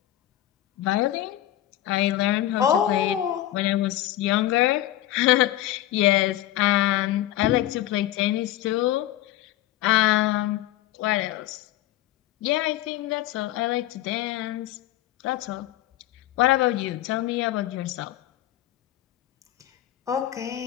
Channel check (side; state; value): right; quieter; 14.0 dB